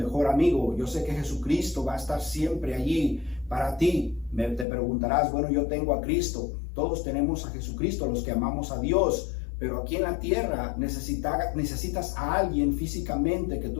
amigo. Yo sé que Jesucristo va a estar siempre allí para ti. Te preguntarás, bueno, yo tengo a Cristo. Todos tenemos a Jesucristo, los que amamos a Dios. Pero aquí en la tierra necesitas a alguien físicamente que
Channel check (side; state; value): right; drops out; at 4.7 s